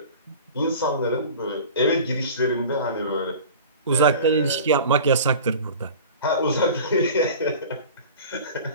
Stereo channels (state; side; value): inverted; both; correlation -0.39